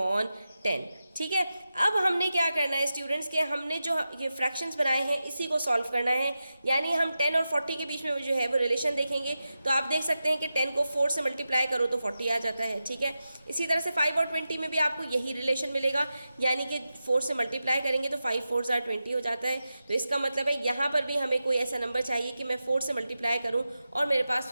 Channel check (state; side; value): inverted; both; correlation -0.91